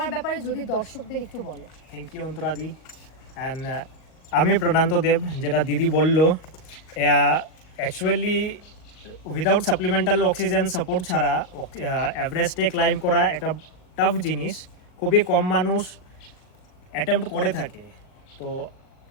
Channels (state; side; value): late; right; 38 ms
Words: ব্যাপারে যদি দর্শকদের একটু বলো। Thank you অন্তরাদি। অ্যান্ড আমি প্রণান্ত দেব, যেটা দিদি বললো, actually without supplemental oxygen support ছাড়া এভারেস্টে ক্লাইম্ব করা একটা টাফ জিনিস। খুবই কম মানুষ অ্যাটেম্প্ট করে থাকে। তো